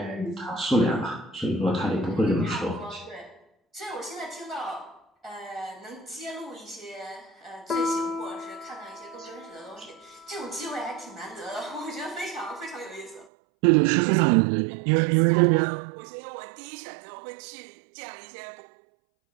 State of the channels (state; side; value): drops out; left; at 13.2 s